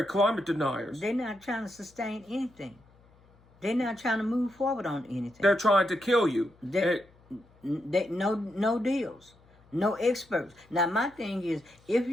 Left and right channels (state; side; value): noise; left; hum, 30 dB below the sound